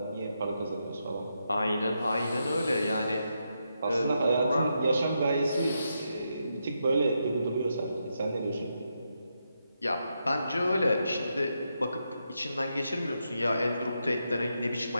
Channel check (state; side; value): inverted; both; correlation -0.83